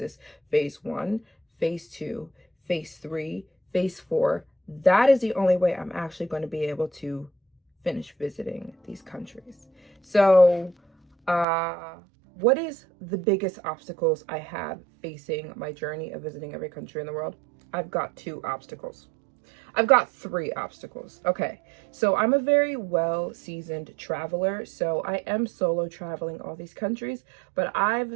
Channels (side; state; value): left; drops out; at 11.5 s